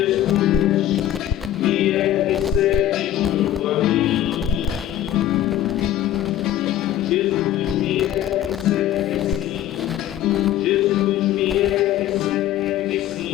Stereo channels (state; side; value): quieter; right; 12.2 dB